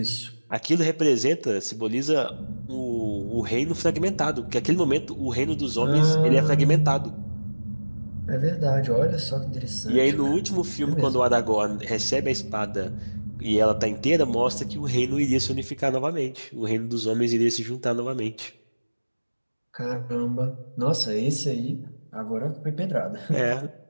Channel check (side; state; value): both; inverted; correlation -1.00